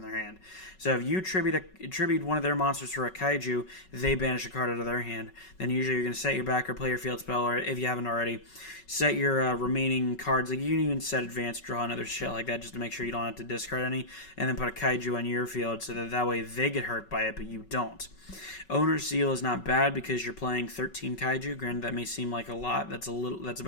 their hand. So if you tribute one of their monsters for a Kaiju, they banish a card out of their hand. Then usually you're going to set your back or play your field spell, or if you haven't already, set your remaining cards. Like, you can even set Advanced Draw and other shit like that just to make sure you don't have to discard any, and then put a Kaiju on your field so that way they get hurt by it, but you don't. Owner's Seal is not bad because you're playing 13 Kaiju. Granted, that may seem like a lot. That's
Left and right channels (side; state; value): right; late; 5.3 ms